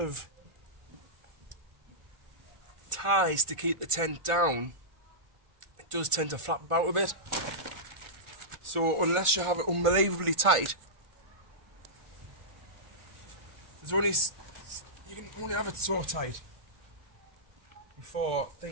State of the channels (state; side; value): late; left; 1.4 ms